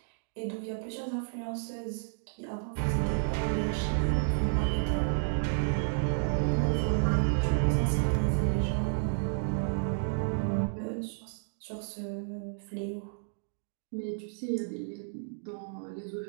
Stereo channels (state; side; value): silent; left; digital silence